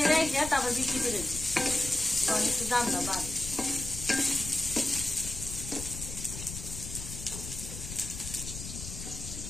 রেখে তারপর বিক্রি করে দিই, তখন একটু দামটা বাড়ে।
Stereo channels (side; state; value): left; noise; rumble, 9 dB below the sound